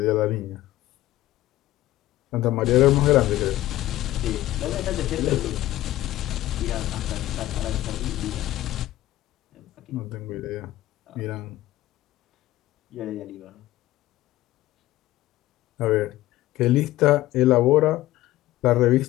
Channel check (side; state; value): right; quieter; 15.8 dB